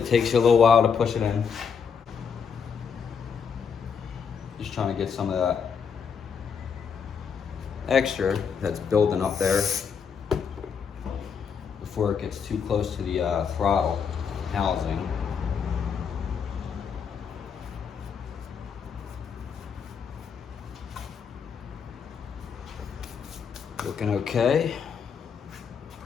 takes you a little while to push it in. Just trying to get some of that extra that's building up there before it gets too close to the throttle housing. Looking okay.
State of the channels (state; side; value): quieter; right; 6.6 dB